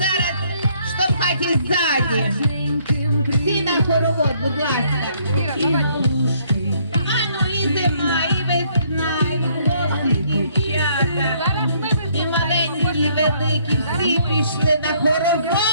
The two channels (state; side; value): inverted; both; correlation -0.66